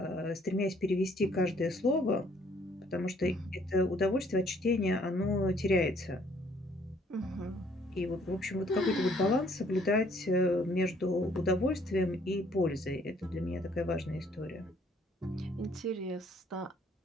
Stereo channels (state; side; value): normal; both; correlation 0.63